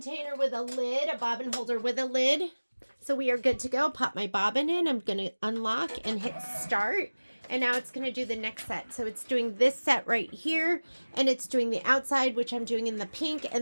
with a lid, a bobbin holder with a lid. So we are good to go. Pop my bobbin in. I'm going to unlock and hit start. And now it's going to do the next set. So it's doing this set right here. And it's doing the outside, which I'm doing in the pink.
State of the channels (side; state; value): both; inverted; correlation -1.00